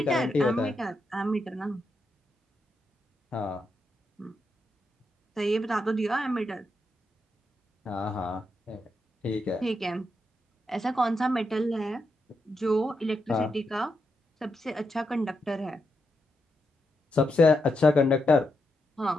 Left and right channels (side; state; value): both; normal; correlation 0.84